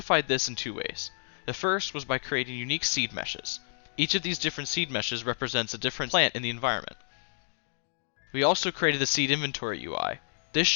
this in two ways. The first was by creating unique seed meshes. Each of these different seed meshes represents a different plant in the environment. We also created the seed inventory UI. This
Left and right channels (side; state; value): right; silent; digital silence